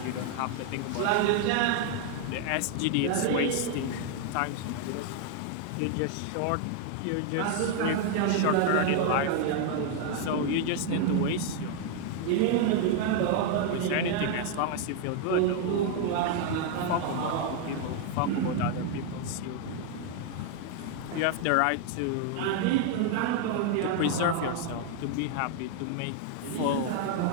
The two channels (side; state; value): both; different; correlation 0.00